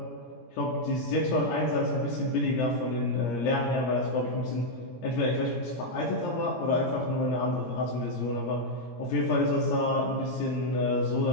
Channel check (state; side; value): late; right; 17 ms